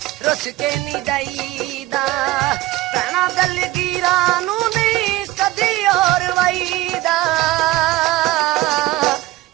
रुस के नहीं जाईदा भैणां दलगीरां नूं नहीं कदी और वाईदा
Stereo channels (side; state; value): left; quieter; 17.8 dB